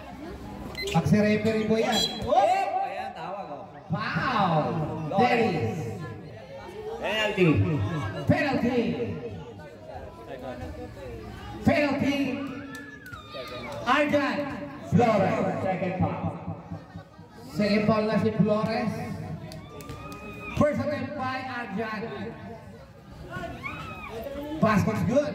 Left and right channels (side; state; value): both; identical; correlation 1.00